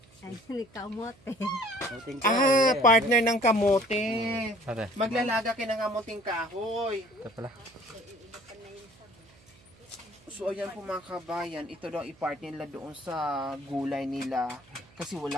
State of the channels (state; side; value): noise; right; hum, 28 dB below the sound